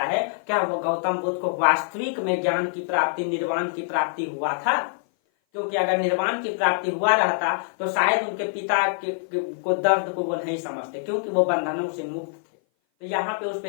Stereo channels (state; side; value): silent; right; 57 dB below the other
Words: है, क्या वो गौतम बुद्ध को वास्तविक में ज्ञान की प्राप्ति, निर्वाण की प्राप्ति हुआ था? क्योंकि अगर निर्वाण की प्राप्ति हुआ रहता तो शायद उनके पिता को दर्द को वो नहीं समझते, क्योंकि वो बंधनों से मुक्त थे। तो यहाँ पे उस